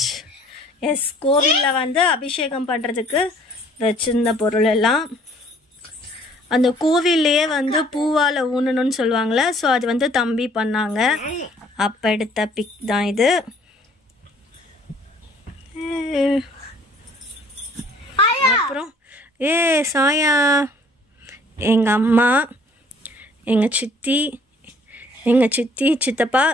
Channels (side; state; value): both; normal; correlation 0.57